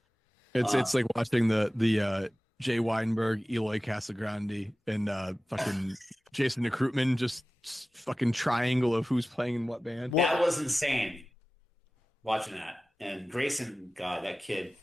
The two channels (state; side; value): normal; both; correlation 0.96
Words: It's like watching the Jay Weinberg, Eloy Casagrande, and fucking Jason Krutman just fucking triangle of who's playing in what band. That was insane. Watching that, and Grayson, God, that kid